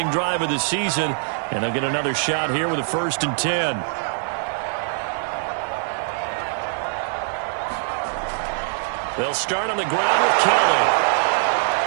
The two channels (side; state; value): left; silent; digital silence